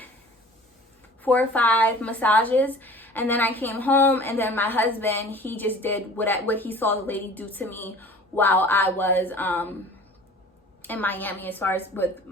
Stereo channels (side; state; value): both; normal; correlation 0.44